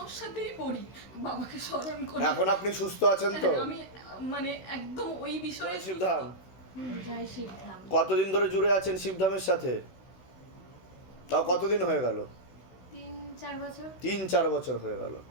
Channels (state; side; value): late; right; 16 ms